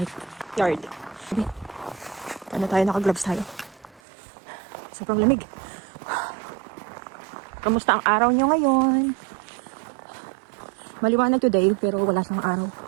yard. Paano tayo? Naka-gloves tayo. Sobrang lamig. Kamusta ang araw nyo ngayon? Maliwanag today, pero wala siyang araw.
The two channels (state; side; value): drops out; left; at 4.0 s